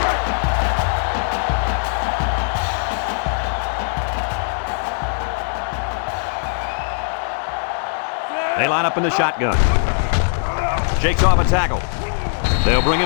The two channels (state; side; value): silent; right; digital silence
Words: They line up in the shotgun. Shakes off a tackle. They'll bring